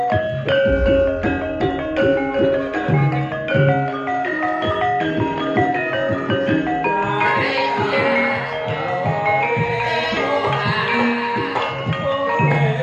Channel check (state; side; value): identical; both; correlation 1.00